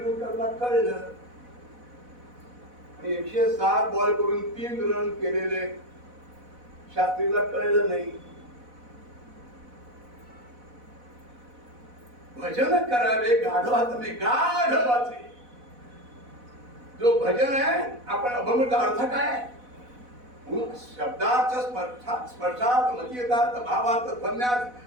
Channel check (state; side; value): late; left; 4.1 ms